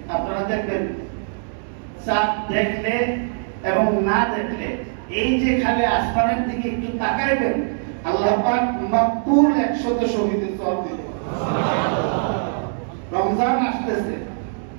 আপনারা দেখবেন চাঁদ দেখলে এবং না দেখলে এই যে খালি আসমানের দিকে একটু তাকাইবেন, আল্লাহ পাক মাকবুল 100 শহীদের সওয়াব দিবেন। রমজান আসতেছে,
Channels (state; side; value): silent; left; digital silence